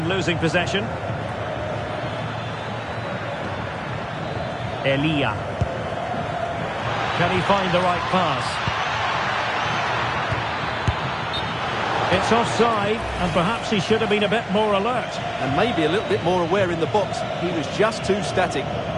losing possession. Elia. Can he find the right pass? It's offside, and perhaps he should have been a bit more alert. And maybe a little bit more aware in the box. He was just too static.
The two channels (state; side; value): identical; both; correlation 1.00